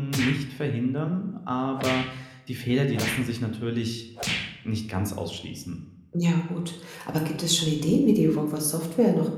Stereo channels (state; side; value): identical; both; correlation 1.00